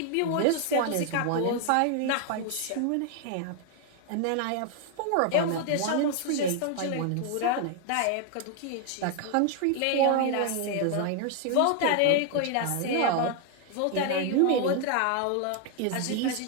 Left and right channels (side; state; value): both; different; correlation 0.00